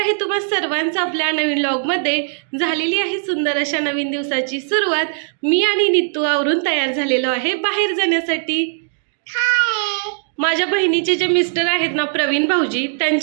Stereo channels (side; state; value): left; silent; digital silence